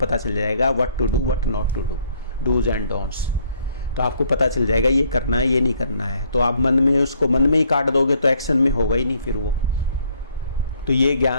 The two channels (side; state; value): both; inverted; correlation -0.65